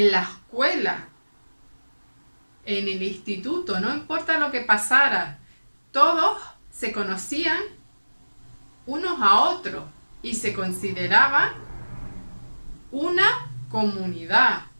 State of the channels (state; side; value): inverted; both; correlation -1.00